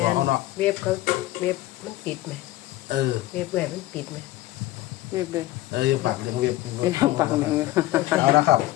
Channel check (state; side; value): quieter; right; 16.3 dB